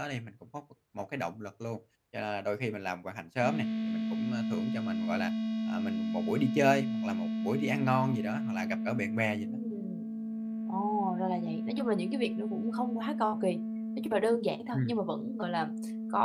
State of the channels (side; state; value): both; identical; correlation 1.00